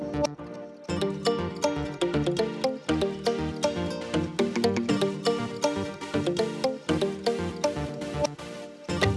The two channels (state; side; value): identical; both; correlation 1.00